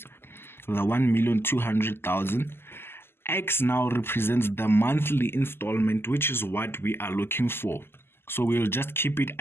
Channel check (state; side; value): late; right; 0.11 ms